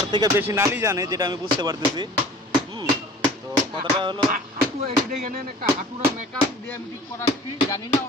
থেকে বেশি নালি জানে, যেটা আমি বুঝতে পারতেছি। তো কথাটা হলো,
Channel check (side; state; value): both; normal; correlation 0.45